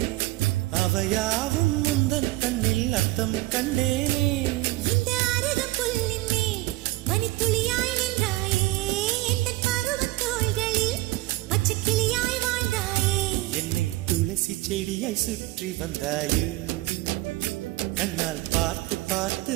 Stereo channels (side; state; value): left; quieter; 18.9 dB